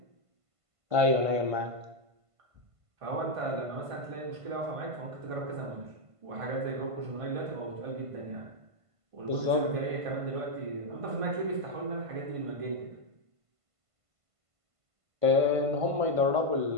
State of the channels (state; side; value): late; left; 1.5 ms